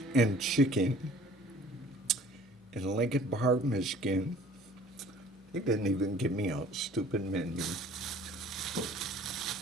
and Chicken in Lincoln Park, Michigan. They didn't even give me a stupid menu.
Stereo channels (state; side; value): normal; both; correlation 0.51